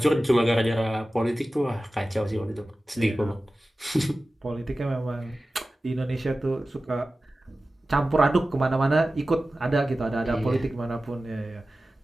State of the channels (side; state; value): both; normal; correlation 0.95